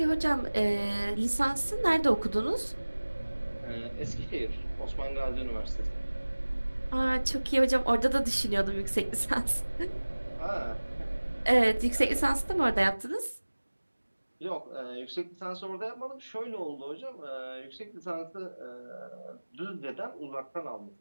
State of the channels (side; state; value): both; inverted; correlation -1.00